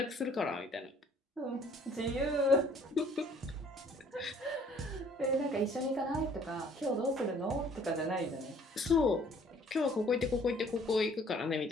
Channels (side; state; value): both; normal; correlation 0.57